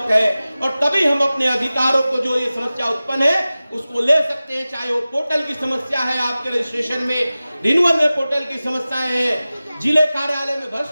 है। और तभी हम अपने अधिकारों को, जो ये समस्या उत्पन्न है, उसको ले सकते हैं। चाहे वो पोर्टल की समस्या है, आपके रजिस्ट्रेशन में रिन्यूअल में पोर्टल की समस्याएं हैं, जिले कार्यालय में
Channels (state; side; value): inverted; both; correlation -0.96